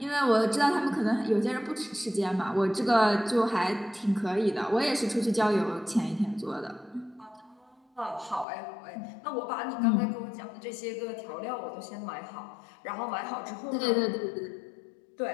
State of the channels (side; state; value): right; drops out; at 8.5 s